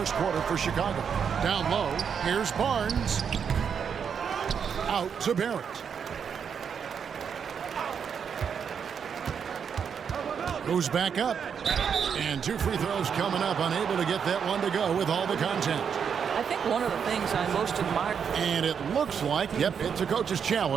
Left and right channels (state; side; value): quieter; left; 7.1 dB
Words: quarter for Chicago. Down low, here's Barnes. Out to Barrett. Goes back up. And 2 free throws coming up, unable to get that one to go with all the content. I think one of the things I most admire. And it looks like, yep, it's a coach's